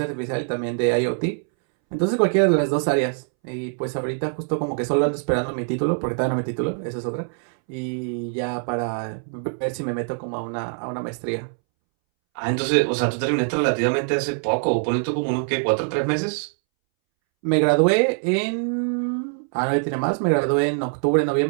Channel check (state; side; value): silent; left; 63 dB below the other